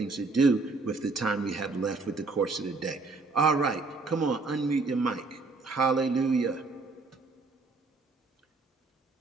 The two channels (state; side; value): quieter; left; 3.8 dB